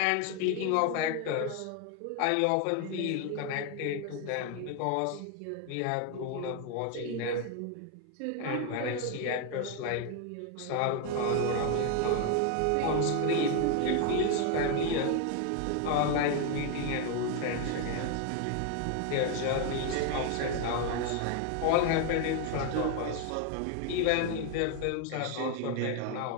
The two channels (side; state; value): both; different; correlation 0.01